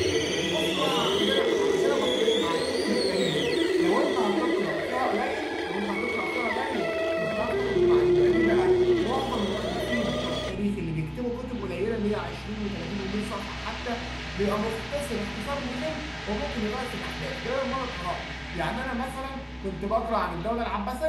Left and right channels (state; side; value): identical; both; correlation 1.00